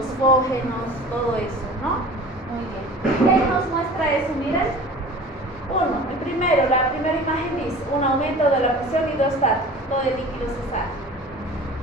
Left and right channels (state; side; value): normal; both; correlation 0.41